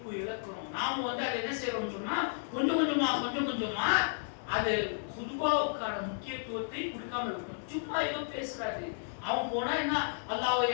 இழக்கிறோம். நாம அதை என்ன செய்யறோம் சொன்னா கொஞ்சம் கொஞ்சமா அது குதுபாவுக்கான முக்கியத்துவத்தை கொடுக்காம இருக்கணும். சும்மா ஏதோ பேசுறாரு, அவன் போனா என்ன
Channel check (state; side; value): silent; right; digital silence